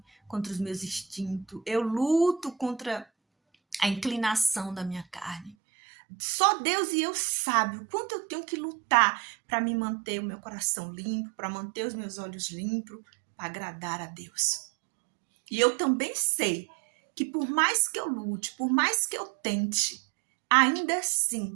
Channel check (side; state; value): left; drops out; at 5.6 s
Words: contra os meus instintos. Eu luto contra a inclinação da minha carne. Só Deus e eu sabe o quanto eu tenho que lutar para me manter o meu coração limpo, para manter os meus olhos limpos, para agradar a Deus. E eu também sei que por mais que eu lute, por mais que eu tente, ainda